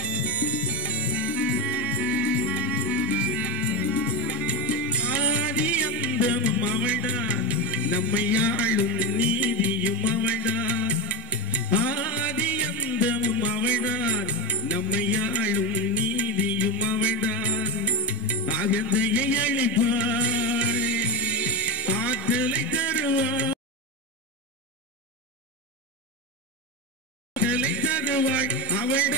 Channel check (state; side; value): normal; both; correlation 0.15